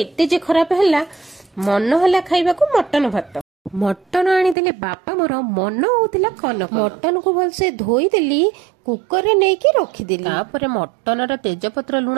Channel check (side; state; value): left; drops out; at 4.5 s